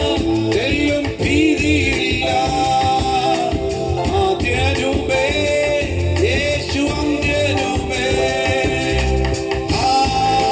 തെല്ലും ഭീതിയില്ല, ആദ്യനുമേ യേശു അന്ത്യനുമേ.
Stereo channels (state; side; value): identical; both; correlation 1.00